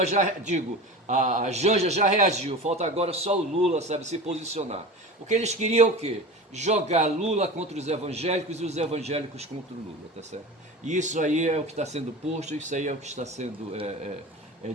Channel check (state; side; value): normal; both; correlation 0.32